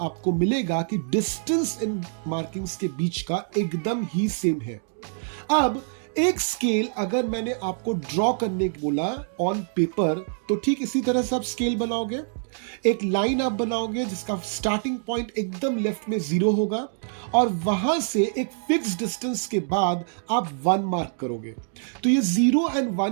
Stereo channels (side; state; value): left; silent; 61 dB below the other